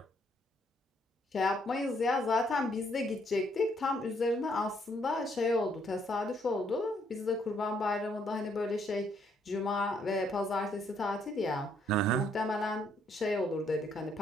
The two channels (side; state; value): both; normal; correlation 0.70